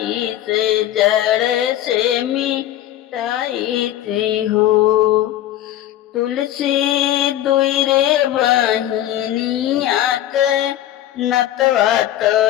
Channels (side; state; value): right; quieter; 12.7 dB